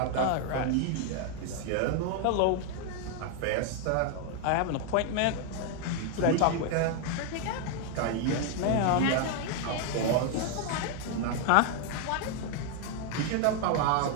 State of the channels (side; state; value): both; different; correlation 0.01